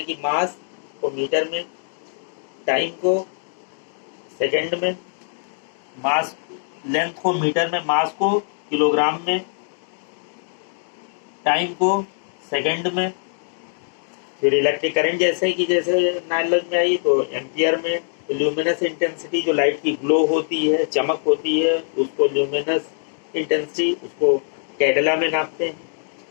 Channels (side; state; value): right; silent; digital silence